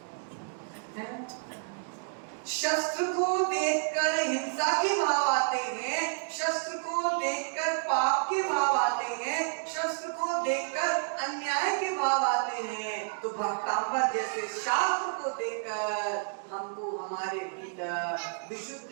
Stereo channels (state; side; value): silent; left; digital silence